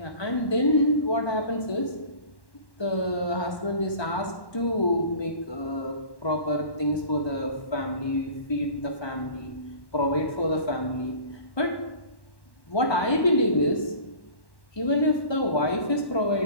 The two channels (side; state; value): right; late; 1.1 ms